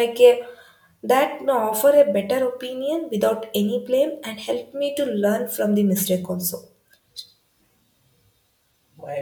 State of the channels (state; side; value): identical; both; correlation 1.00